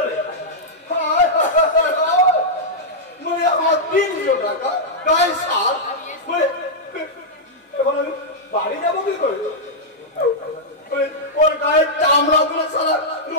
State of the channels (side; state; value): both; normal; correlation -0.07